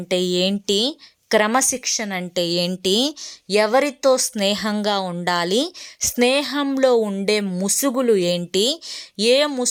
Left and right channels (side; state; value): both; identical; correlation 1.00